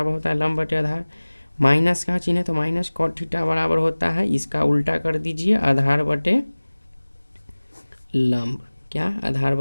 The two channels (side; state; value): both; inverted; correlation -1.00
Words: होता है लंब बटे आधार। माइनस का चिन्ह है तो माइनस कॉट थीटा बराबर होता है, इसका उल्टा कर दीजिए, आधार बटे लंब। क्या? आधार